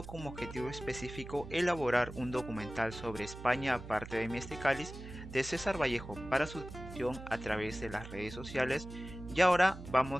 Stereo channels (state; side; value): noise; right; hum, 12 dB below the sound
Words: como objetivo específico elaborar un documental sobre España aparte de mi este cáliz de César Vallejo para su difusión a través de las redes sociales. Y ahora